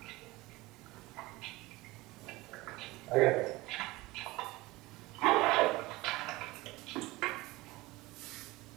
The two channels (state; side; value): quieter; left; 20.5 dB